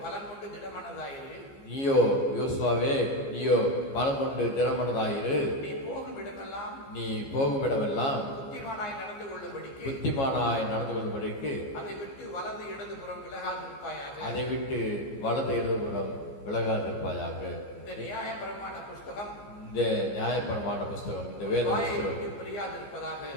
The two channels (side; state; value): right; late; 14 ms